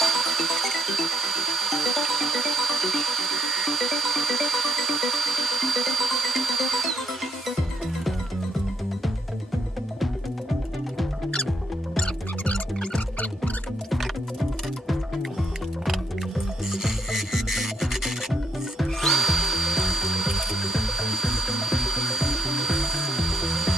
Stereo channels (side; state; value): both; normal; correlation 0.76